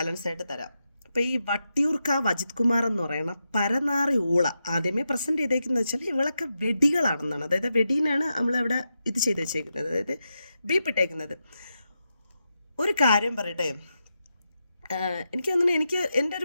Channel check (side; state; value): both; inverted; correlation -0.87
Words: ആയിട്ട് തരാം. അപ്പോൾ ഈ വട്ടിയൂർക്കാവ് അജിത് കുമാർ എന്ന് പറയുന്ന പരനാറി ഊള ആദ്യമേ പ്രസൻറ്റ് ചെയ്തേക്കുന്നത് വെച്ചാൽ ഇവളൊക്കെ വെടികളാണെന്നാണ്. അതായത് വെടീനാണ് നമ്മളവിടെ ഇത് ചെയ്ത് വെച്ചേക്കുന്നത്, അതായത് ബീപ്പിട്ടേക്കുന്നത്. ഒരു കാര്യം പറയട്ടെ, എനിക്ക് തോന്നുന്നു എനിക്ക് എൻ്റെ